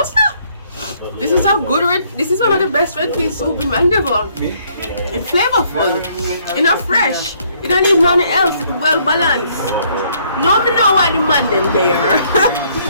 sir. This is a good red. This is one of the best red pea soup in Mandeville. It's flavorful. It's not fresh. You don't need nothing else. It's well balanced. No, me know why the man them there.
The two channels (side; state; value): both; inverted; correlation -0.66